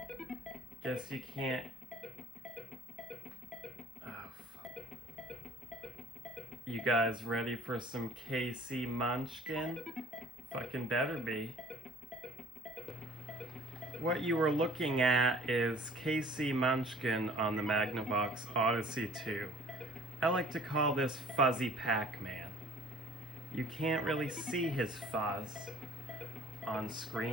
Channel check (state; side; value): normal; both; correlation 0.51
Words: Guess you can't... Oh, fuck. You guys ready for some KC Munchkin? Fucking better be. What you were looking at is KC Munchkin on the Magnavox Odyssey 2. I like to call this Fuzzy Pac-Man. You can't really see his fuzz on